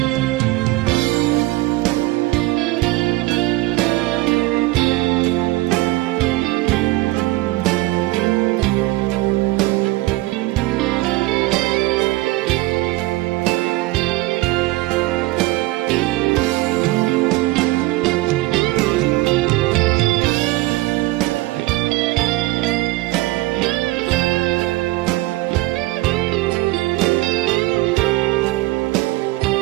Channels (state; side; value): quieter; left; 19.6 dB